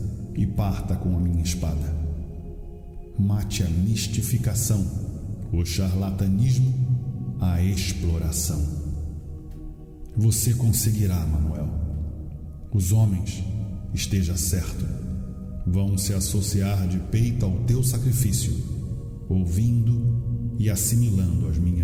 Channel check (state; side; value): identical; both; correlation 1.00